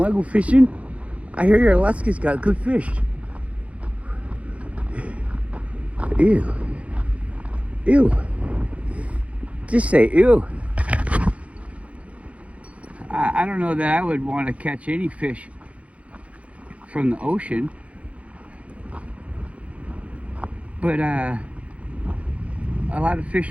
to go fishing? I hear your Alaska's got good fish. Ew. Ew. Just say ew. I don't know that I would want to catch any fish from the ocean. But a lot of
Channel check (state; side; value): late; left; 0.064 ms